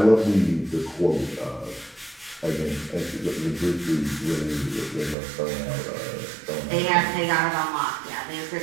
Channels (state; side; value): drops out; left; at 5.2 s